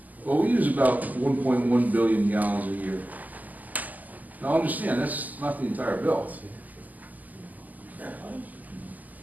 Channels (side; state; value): left; late; 0.079 ms